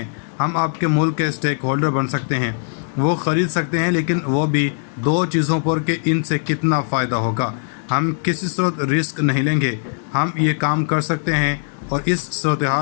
हम आपके मुल्क के स्टेक होल्डर बन सकते हैं, वो ख़रीद सकते हैं, लेकिन वो भी दो चीज़ों पर कि इनसे कितना फ़ायदा होगा। हम किसी सूरत रिस्क नहीं लेंगे, हम ये काम कर सकते हैं और इस सूरत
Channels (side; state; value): right; silent; 59 dB below the other